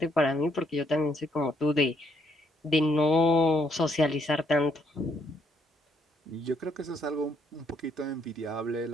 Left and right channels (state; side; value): normal; both; correlation 0.72